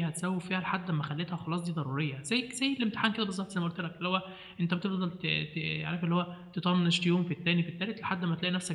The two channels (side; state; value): both; identical; correlation 1.00